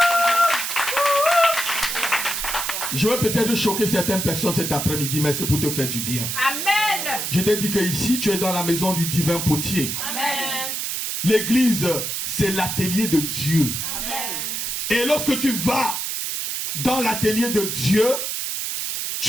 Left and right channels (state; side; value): noise; right; hiss, 2 dB below the sound